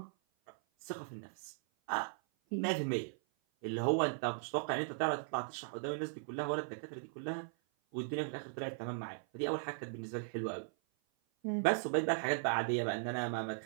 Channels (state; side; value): silent; left; 52 dB below the other